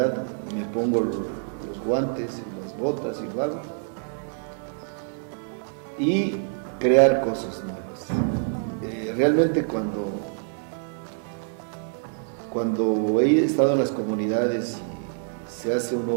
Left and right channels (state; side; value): silent; left; 61 dB below the other